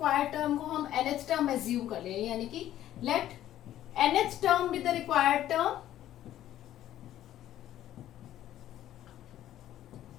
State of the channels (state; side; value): quieter; right; 12.6 dB